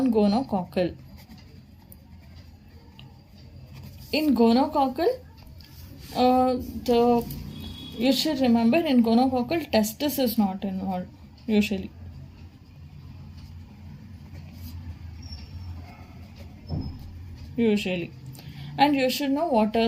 In gonococcal, you should remember, in gonococcal testis is not involved usually. And you should know what are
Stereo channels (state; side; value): identical; both; correlation 1.00